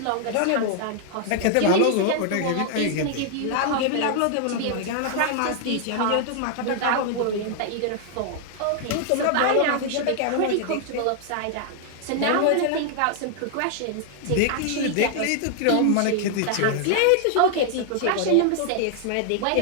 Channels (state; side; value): different; both; correlation 0.00